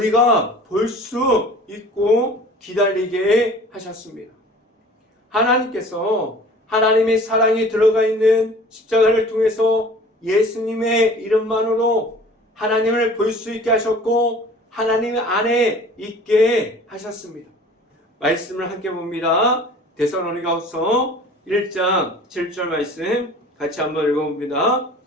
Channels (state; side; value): normal; both; correlation 0.46